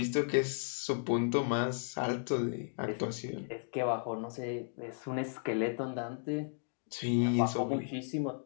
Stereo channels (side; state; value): right; silent; digital silence